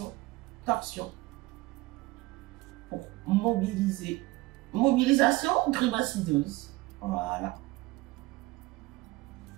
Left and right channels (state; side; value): quieter; left; 20.0 dB